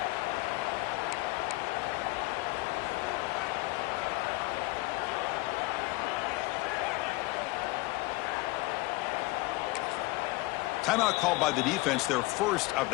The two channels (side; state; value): right; quieter; 21.6 dB